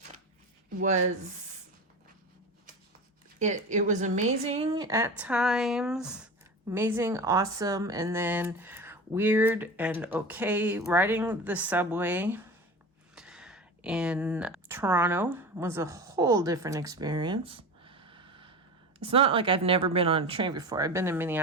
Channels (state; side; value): normal; both; correlation 0.30